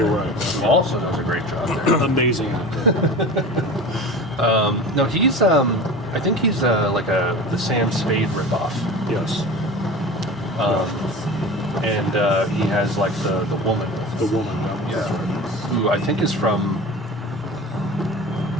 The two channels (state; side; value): normal; both; correlation 0.34